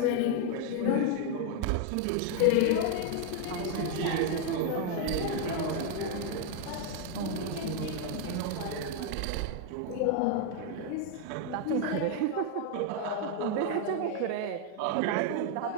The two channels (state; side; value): different; both; correlation 0.01